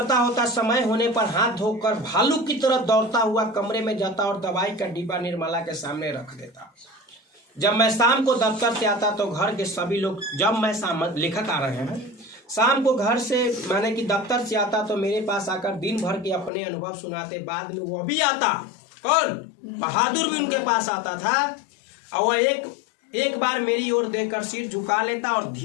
होता, समय होने पर हाथ धोकर भालू की तरह दौड़ता हुआ कमरे में जाता और दवाई का डिब्बा निर्मला के सामने रख देता। जब मैं शाम को दफ्तर से आता तो घर के सभी लोग, जब मैं लेखक आ रहे हैं, शाम को घर से माने कि दफ्तर से आता तो मेरे पास आकर दिन भर के अपने अनुभव सुनाते। बाद में वह भी आता। कौन? बहादुर भी उनके पास आता था। और वह एक बार मेरी ओर देखकर सिर झुका लेता और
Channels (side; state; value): right; drops out; at 16.5 s